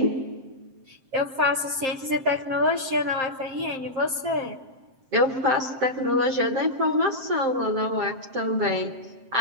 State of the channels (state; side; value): late; left; 7.6 ms